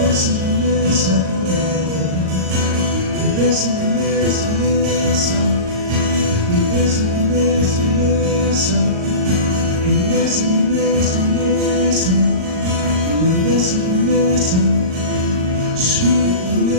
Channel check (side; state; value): left; late; 38 ms